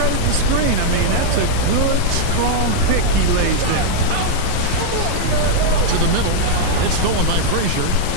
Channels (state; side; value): different; both; correlation -0.01